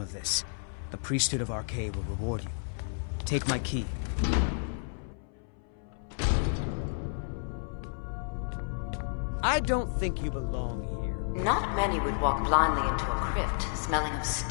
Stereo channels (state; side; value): silent; right; 57 dB below the other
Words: of this, the priesthood of Arcade will reward you. Take my key. I don't think you belong here. Not many would walk blindly into a crypt, smelling of